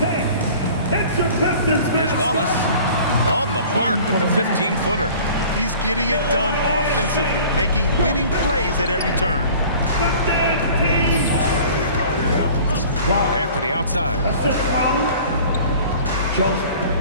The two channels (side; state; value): both; inverted; correlation -0.46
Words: Here's Wallace on the mark with the 15-footer. He's getting it done offensively, making winning plays at every turn. Anthony outside.